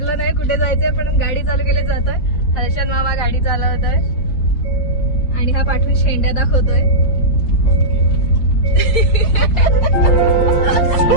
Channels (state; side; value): late; right; 5.6 ms